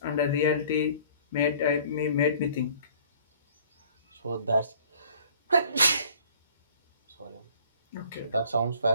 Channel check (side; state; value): both; inverted; correlation -0.54